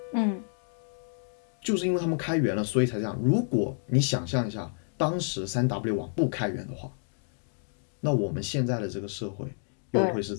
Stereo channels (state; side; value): silent; right; 58 dB below the other